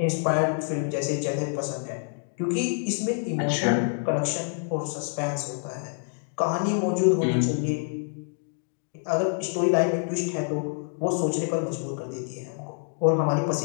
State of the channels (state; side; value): silent; right; 57 dB below the other